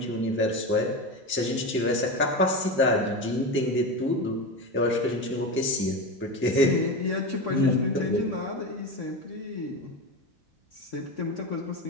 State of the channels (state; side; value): normal; both; correlation 0.21